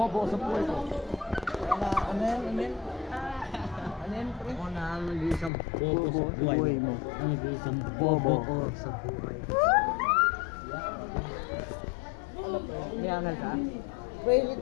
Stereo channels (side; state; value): right; drops out; at 5.5 s